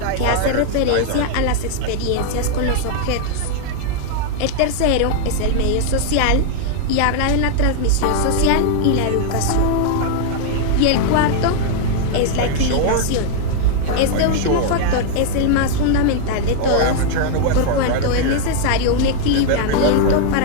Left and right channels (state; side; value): different; both; correlation 0.00